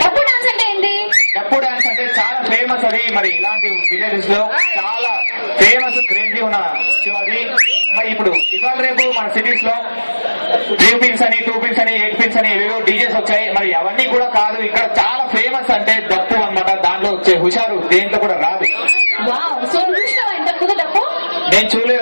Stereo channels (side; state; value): both; inverted; correlation -1.00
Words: డప్పు డాన్స్ అంటే ఏంటి? డప్పు డాన్స్ అంటే చాలా ఫేమస్ అది. మరి ఇలాంటి విలేజెస్ లో చాలా ఫేమస్ క్రేజీ ఉన్న అది. మరి ఇప్పుడు ఇవాళ రేపు మన సిటీస్ లో 3 పిన్స్ అని 2 పిన్స్ అని 8 పిన్స్ అని ఏవేవో డీజేస్ వచ్చాయి. మరి అవన్నీ కూడా కాదు, ఇక్కడ చాలా ఫేమస్ అంటే డప్పు అన్నమాట. దాంట్లో వచ్చే హుషారు దేంట్లో కూడా రాదు. నేను